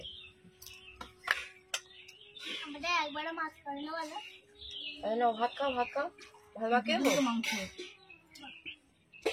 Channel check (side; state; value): both; identical; correlation 1.00